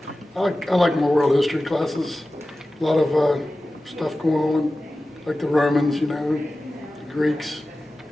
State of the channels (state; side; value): normal; both; correlation 0.95